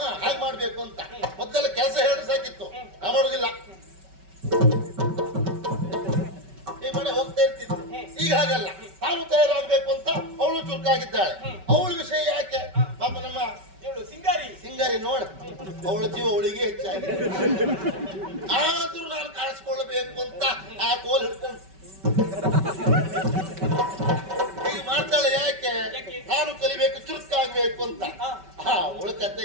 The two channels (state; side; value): late; left; 5.2 ms